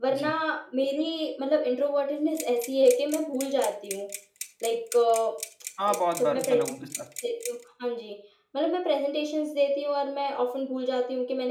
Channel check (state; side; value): identical; both; correlation 1.00